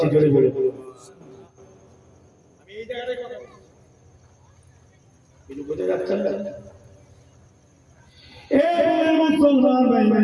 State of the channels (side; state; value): both; identical; correlation 1.00